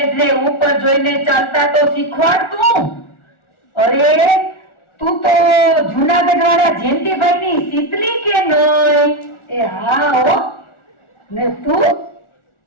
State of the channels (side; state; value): right; late; 1.4 ms